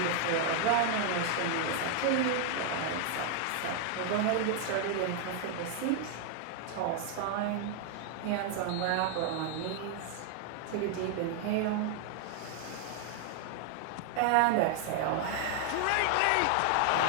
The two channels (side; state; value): both; different; correlation 0.00